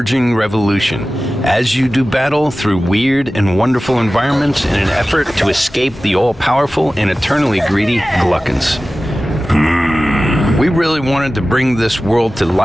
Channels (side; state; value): left; noise; rumble, 23 dB below the sound